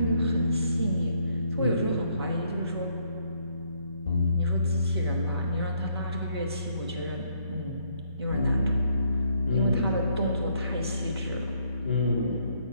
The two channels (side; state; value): both; inverted; correlation -0.70